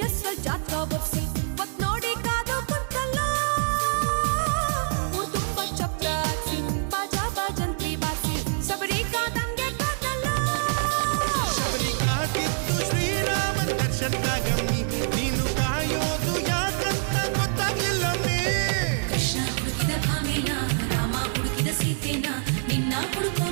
ಹೆಸ್ರಲ್ಲಿ ಜಾತಕ ಬರ್ಸಿ ಒತ್ ನೋಡಿ ಕಾದು ಕುಂತಲ್ಲ ಊರ್ ತುಂಬ ಚಪ್ರ ಹಾಕ್ಸಿ ಬಾಜಾ ಬಾಜಂತ್ರಿ ಬಾರ್ಸಿ ಶಬರಿ ಕಾದಂಗೆ ಕಾದಲ್ಲ ಶಬರಿ ಕಾದಿದ್ದು ಶ್ರೀರಾಮನ್ ದರ್ಶನ್ಕಾಗಮ್ಮಿ ನೀನು ಕಾಯೋದು ಯಾಕಂತ ಗೊತ್ತಾಗ್ಲಿಲ್ಲಮ್ಮಿ ಕೃಷ್ಣ ಹುಡುಕಿದ ಭಾಮೇನ ರಾಮ ಹುಡುಕಿದ ಸೀತೆನ ನಿನ್ನ ಹುಡುಕೋ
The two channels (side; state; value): left; silent; 61 dB below the other